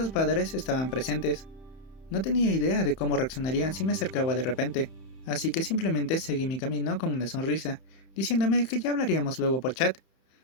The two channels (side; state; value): right; late; 30 ms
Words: padres estaban presentes. No tenía idea de cómo reaccionarían si me acercaba de repente, así que simplemente seguí mi camino con una sonrisa, diciéndome que ya hablaríamos luego por chat.